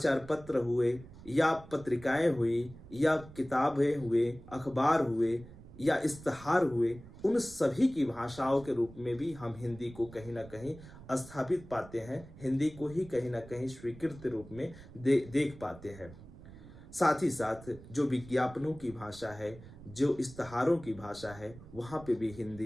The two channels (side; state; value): right; noise; rumble, 18 dB below the sound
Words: पत्र हुए या पत्रिकाएं हुई या किताबें हुए, अखबार हुए या इश्तहार हुए, उन सभी की भाषाओं के रूप में भी हम हिंदी को कहीं ना कहीं स्थापित पाते हैं, हिंदी को ही कहीं ना कहीं स्वीकृत रूप में देख पाते हैं। साथ ही साथ जो विज्ञापनों की भाषा है, जो इश्तहारों की भाषा है, वहाँ पे भी